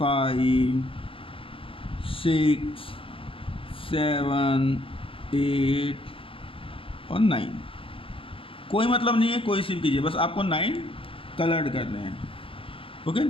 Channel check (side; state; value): right; late; 0.26 ms